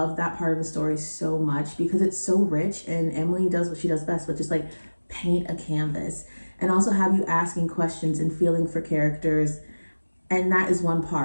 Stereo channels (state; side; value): inverted; both; correlation -1.00